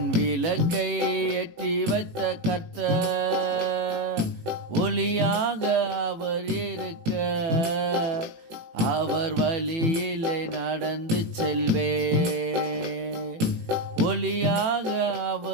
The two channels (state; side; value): late; left; 18 ms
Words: விளக்கை ஏற்றி வைத்த கர்த்தர். ஒளியாக அவர் இருக்க, அவர் வழியிலே நடந்து செல்வே. ஒளியாக